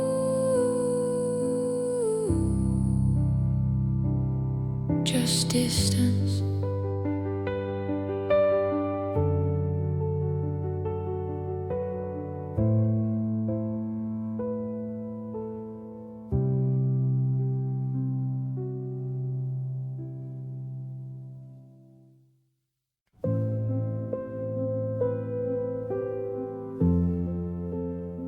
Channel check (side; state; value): both; identical; correlation 1.00